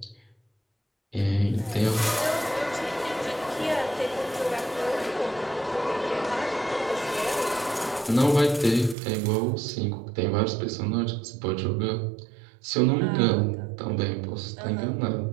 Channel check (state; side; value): drops out; left; at 9.0 s